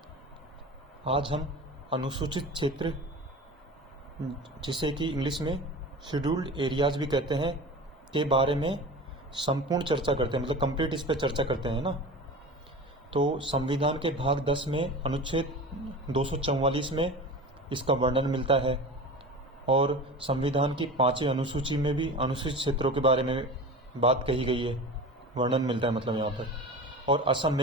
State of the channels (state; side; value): normal; both; correlation 0.33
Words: आज हम अनुसूचित क्षेत्र, जिसे कि इंग्लिश में शेड्यूल्ड एरियाज भी कहते हैं, के बारे में संपूर्ण चर्चा करते हैं, मतलब कंप्लीट इस पर चर्चा करते हैं ना। तो संविधान के भाग 10 में अनुच्छेद 244 में इसका वर्णन मिलता है और संविधान की 5वीं अनुसूची में भी अनुसूचित क्षेत्रों के बारे में बात कही गई है, वर्णन मिलता है मतलब यहाँ पर। और असम,